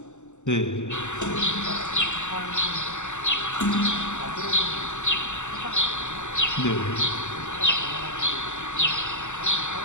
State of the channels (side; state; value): right; late; 0.84 ms